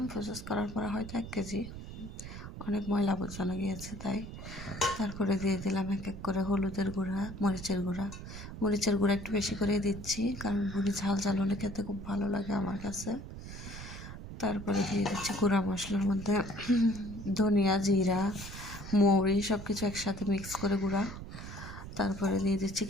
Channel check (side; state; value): right; noise; rumble, 11 dB below the sound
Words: প্রসেস করার পরে হয়তো 1 কেজি। অনেক ময়লা আবর্জনা গিয়েছে তাই। তারপরে দিয়ে দিলাম এক এক করে হলুদের গুঁড়া, মরিচের গুঁড়া একটু বেশি করে দিচ্ছি, কারণ ভুড়ি ঝাল ঝাল হলে খেতে খুব ভালো লাগে আমার কাছে। তারপরে দিয়ে দিচ্ছি গুঁড়া মশলার মধ্যে ধনিয়া, জিরা, মৌরি সব কিছু একসাথে মিক্স করে গুঁড়া। তারপরে দিয়ে দিচ্ছি